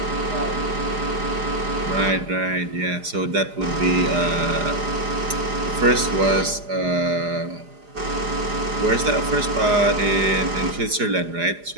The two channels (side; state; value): left; late; 4.9 ms